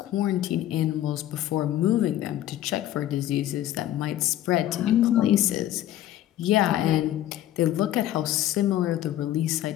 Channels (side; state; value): right; quieter; 13.0 dB